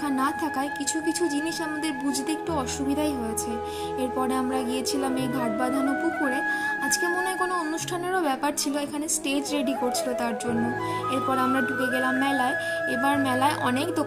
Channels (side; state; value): both; identical; correlation 1.00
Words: না থাকায় কিছু কিছু জিনিস আমাদের বুঝতে একটু অসুবিধাই হয়েছে। এরপরে আমরা গিয়েছিলাম এই ঘাট বাঁধানো পুকুরে। আজকে মনে হয় কোনো অনুষ্ঠানেরও ব্যাপার ছিল, এখানে স্টেজ রেডি করছিল তার জন্য। এরপর আমরা ঢুকে গেলাম মেলায়। এবার মেলায় অনেক